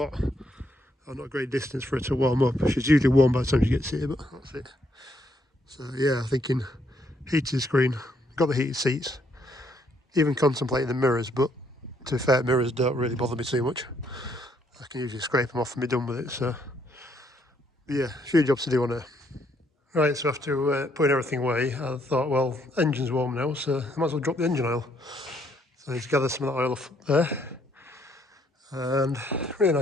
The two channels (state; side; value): normal; both; correlation 0.71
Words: or not a great distance for it to warm up. She's usually warm by the time she gets here, but that's it. So yeah, thinking heated screen, got the heated seats, even contemplating the mirrors, but to be fair, mirrors don't really bother me too much. I can usually scrape them off and be done with it, so yeah, a few jobs to do on her. Right, so after putting everything away, I thought, well, engine's warm now, so I might as well drop the engine oil. So I need to gather some of that oil off there, and really